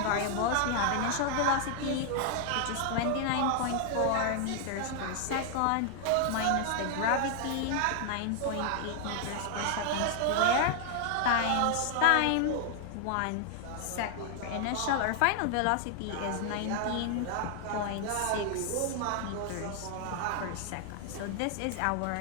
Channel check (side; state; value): both; different; correlation 0.00